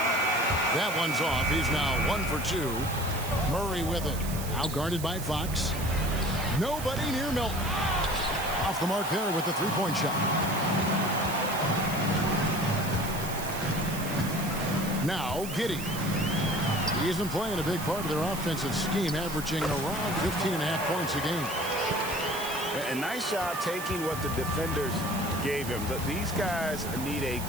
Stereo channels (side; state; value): right; noise; hiss, 10 dB below the sound